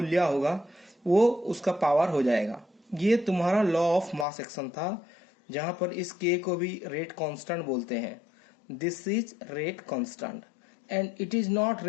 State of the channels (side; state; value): right; drops out; at 4.2 s